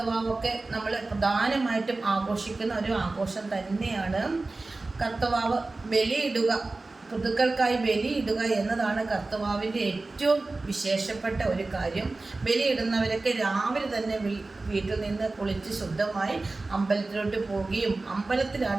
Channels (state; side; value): quieter; left; 3.3 dB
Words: നമ്മൾ പ്രധാനമായിട്ടും ആഘോഷിക്കുന്ന ഒരു ആഘോഷം തന്നെയാണ്. കർത്തവാവ് ബലിയിടുക, ഋതുക്കൾക്കായി ബലിയിടുക എന്നതാണ് കർത്തവാവിൻ്റെ ഏറ്റവും വിശേഷപ്പെട്ട ഒരു കാര്യം. ബലിയിടുന്നവരൊക്കെ രാവിലെ തന്നെ വീട്ടിൽ നിന്ന് കുളിച്ച് ശുദ്ധമായി അമ്പലത്തിലോട്ട് പോവുകയും